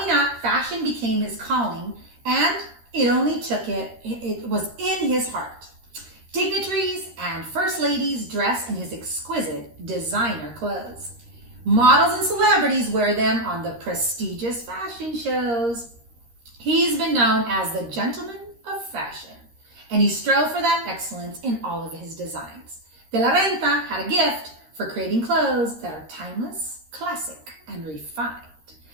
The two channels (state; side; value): late; left; 13 ms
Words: up, fashion became his calling, and it was in his heart. Dignitaries and first ladies dress in his exquisite designer clothes. Models and celebrities wear them on the prestigious fashion shows. He's been known as the gentleman of fashion, and he strove for that excellence in all of his designs. Velarenta had a gift for creating clothes that are timeless, classic, and refined.